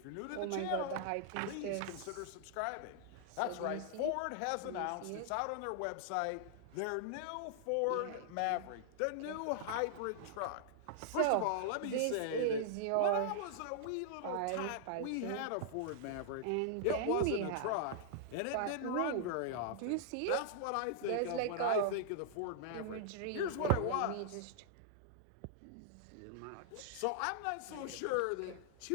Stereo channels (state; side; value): different; both; correlation -0.01